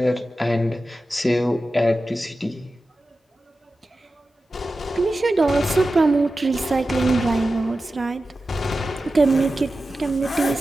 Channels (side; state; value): both; normal; correlation 0.93